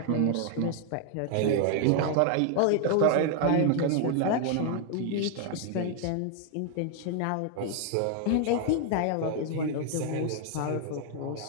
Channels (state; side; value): different; both; correlation 0.00